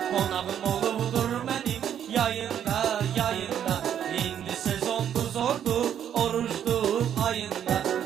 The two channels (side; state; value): left; quieter; 9.5 dB